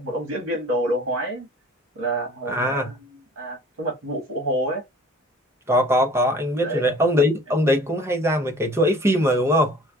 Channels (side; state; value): both; normal; correlation 0.48